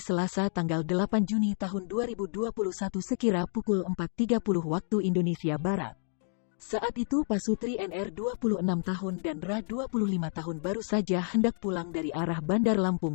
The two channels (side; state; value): right; silent; 58 dB below the other